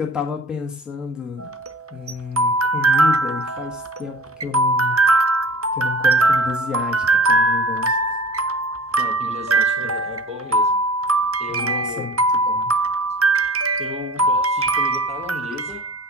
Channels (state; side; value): normal; both; correlation 0.42